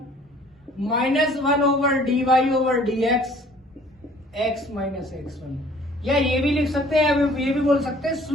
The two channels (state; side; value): normal; both; correlation 0.54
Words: -1 dy/dx x minus x1, या ये भी लिख सकते हैं, ये भी बोल सकते हैं